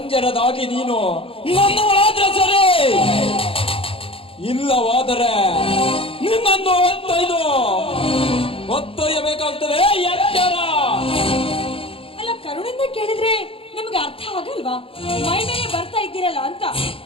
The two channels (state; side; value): late; right; 0.27 ms